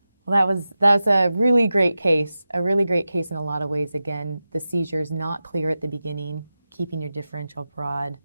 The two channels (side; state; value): both; inverted; correlation -0.93